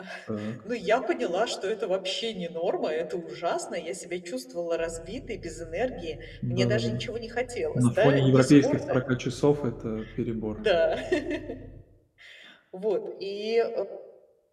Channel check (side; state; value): both; identical; correlation 1.00